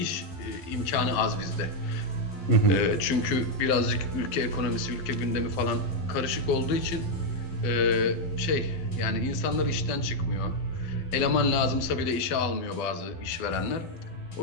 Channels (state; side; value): late; right; 12 ms